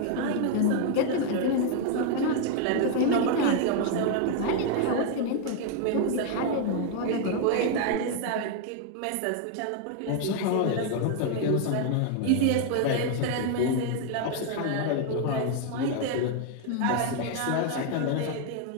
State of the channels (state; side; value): different; both; correlation 0.00